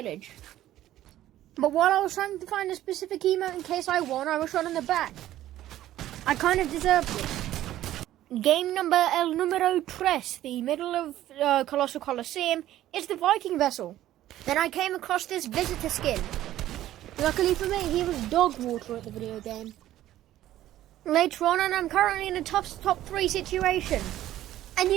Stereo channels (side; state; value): left; quieter; 13.6 dB